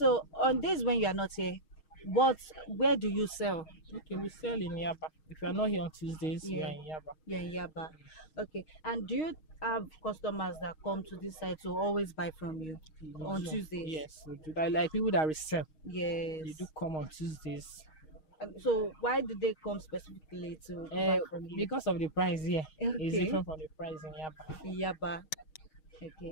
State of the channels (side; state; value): right; late; 6.4 ms